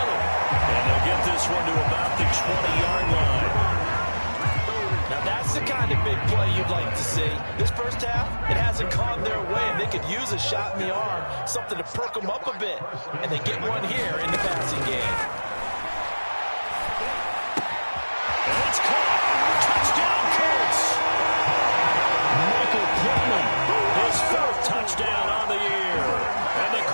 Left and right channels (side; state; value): both; inverted; correlation -1.00